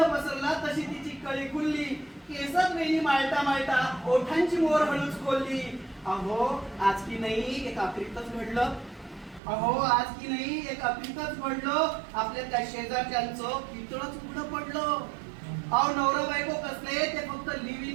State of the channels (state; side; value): drops out; left; at 9.4 s